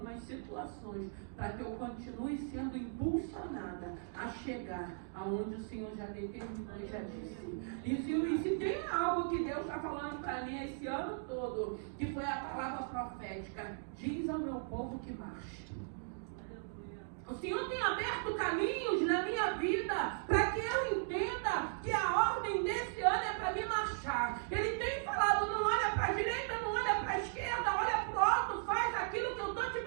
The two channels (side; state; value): left; silent; digital silence